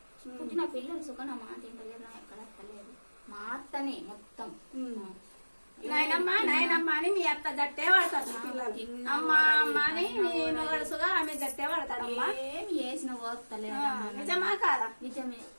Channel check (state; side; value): inverted; both; correlation -1.00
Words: పుట్టిన పిల్లలు సుఖన మాట తింటలేరు. నా ఎక్కడ అత్తలేదు. మా అత్తనే మొత్తం. నాయనమ్మా నాయనమ్మ అని మీ అత్త దట్టే వాడతారు పిల్లలు. అమ్మ అమ్మ అని నీ మొగడుసుగా ఆమె దట్టే వాడతాడమ్మా. ఏమి చేసిన పోతలేదు. నిజమా కాదా? నిజమే.